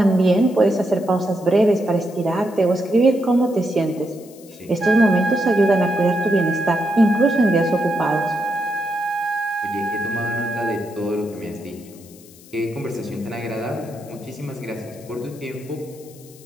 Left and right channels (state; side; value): noise; left; hiss, 23 dB below the sound